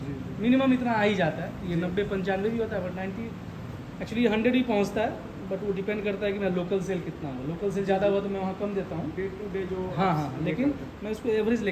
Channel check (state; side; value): identical; both; correlation 1.00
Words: जी मिनिमम इतना आ ही जाता है। ये जी। 90-95 भी होता है, बट 90 एक्चुअली 100 ही पहुंचता है। बट वो डिपेंड करता है कि मेरा लोकल सेल कितना हो। लोकल सेल ज़्यादा हुआ तो मैं वहाँ कम देता हूँ। डे टू डे जो हाँ आप हाँ, ये लेकिन करते हैं। मैं उसको एवरेज